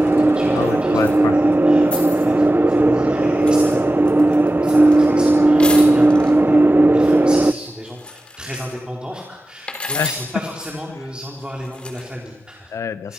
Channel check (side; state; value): both; normal; correlation 0.94